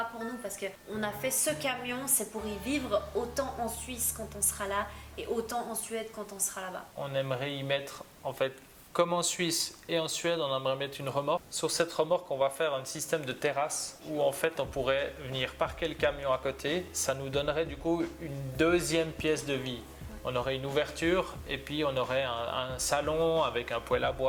pour nous, parce qu'on a fait ce camion, c'est pour y vivre autant en Suisse quand on sera là et autant en Suède quand on sera là-bas. On aimerait y mettre, en fait, comme en Suisse et en Suède, on aimerait mettre une remorque. Sur cette remorque, on va faire un système de terrasse où en fait on pourrait venir parquer le camion à côté. Ça nous donnerait du coup une deuxième pièce de vie. On aurait une ouverture et puis on aurait un salon avec un poêle à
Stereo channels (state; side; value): identical; both; correlation 1.00